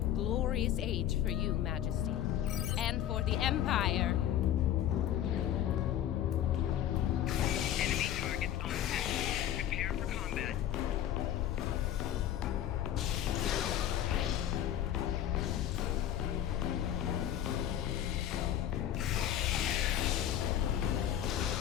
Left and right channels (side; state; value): right; quieter; 11.1 dB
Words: glorious age for you, Majesty. And for the Empire. Enemy targets on set. Prepare for combat.